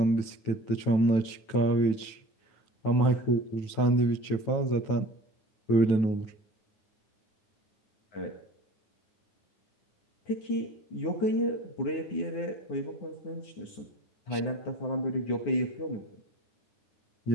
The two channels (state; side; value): late; right; 9.2 ms